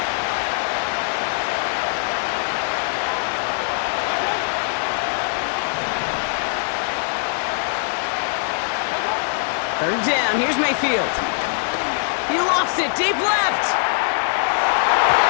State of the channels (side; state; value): right; silent; digital silence